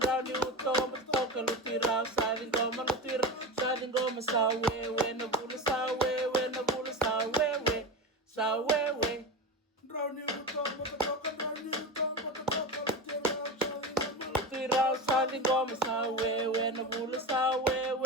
uto mbota toka, lutui rau sa ngoma, lutui rau sa ngoma sa wewe na bula sa wewe na bula sa wewe sa wewe. Rauni uto mbota toka, rauni uto mbota toka, lutui rau sa ngoma sa wewe na bula sa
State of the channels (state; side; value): normal; both; correlation 0.23